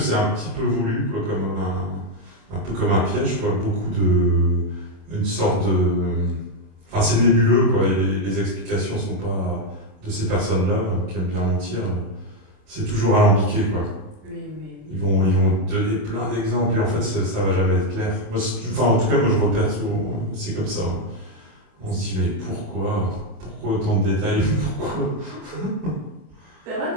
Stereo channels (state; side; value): late; left; 27 ms